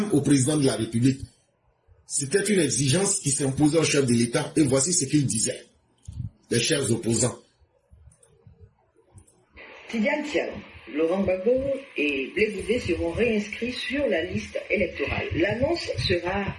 au président de la République. C'était une exigence qui s'imposait au chef de l'État et voici ce qu'il disait, les chers opposants. Tidiane Tiam, Laurent Gbagbo et Blé Boudet seront réinscrits sur la liste électorale. L'annonce sera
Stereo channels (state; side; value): identical; both; correlation 1.00